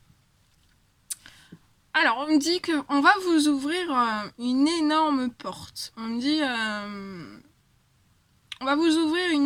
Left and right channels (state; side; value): identical; both; correlation 1.00